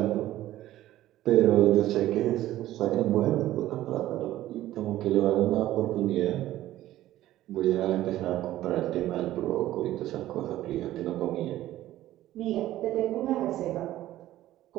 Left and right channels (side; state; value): left; quieter; 14.4 dB